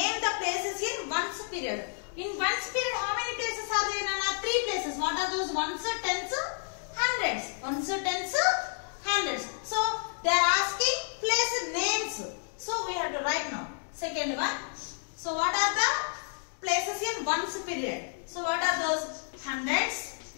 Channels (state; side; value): silent; right; 58 dB below the other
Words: the places in ones period. In ones period, how many places are there? Nana? 3 places. What are those? Ones, tens, hundreds. Ones, tens, hundreds. So they are asking place names. So we have to write now. Second one. So what are the places in ones period? So what are those? Hundreds.